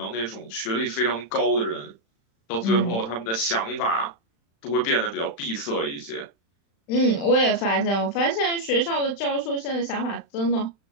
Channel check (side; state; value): right; late; 35 ms